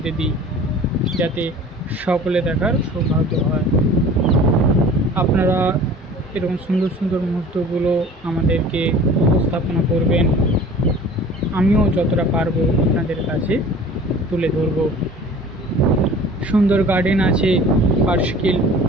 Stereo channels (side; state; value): both; normal; correlation 0.44